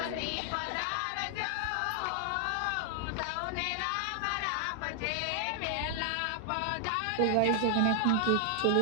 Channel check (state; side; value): different; both; correlation 0.00